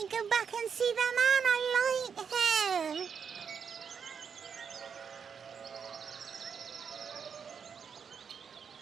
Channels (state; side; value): quieter; left; 6.7 dB